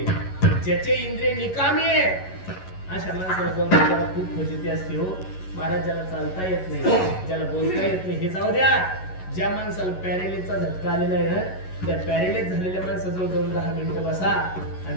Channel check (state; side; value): late; right; 11 ms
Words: ज्याचे इंद्रिय निकामी आहे अशा माणसाला जाऊन खूप फजिती असते हो महाराज. ज्याला चालता येत नाही, ज्याला बोलता येत नाही, हे जाऊ द्या. ज्या माणसाला पॅरेलिसचा झटका आलेला आहे ना, त्या पॅरेलिस झालेल्या माणसाजवळ जाऊन 10 मिनिटं बसा